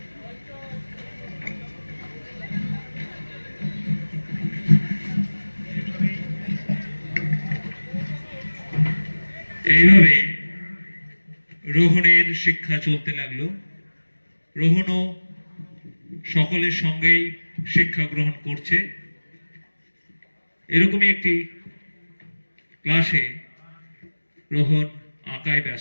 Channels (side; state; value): both; inverted; correlation -1.00